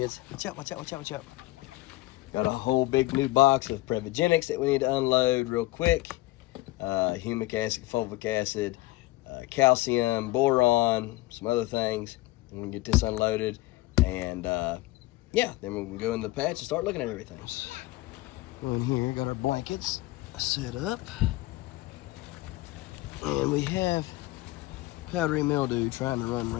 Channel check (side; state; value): right; quieter; 19.2 dB